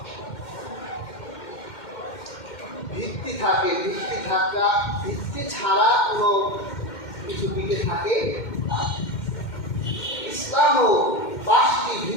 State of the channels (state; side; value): late; right; 2.1 ms